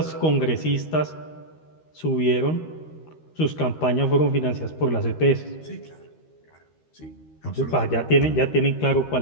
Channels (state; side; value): late; right; 13 ms